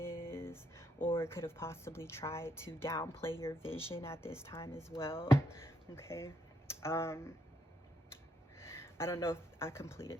or could have possibly tried to downplay your vision at this time as well. Okay, I don't know if I completed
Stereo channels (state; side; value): normal; both; correlation 0.75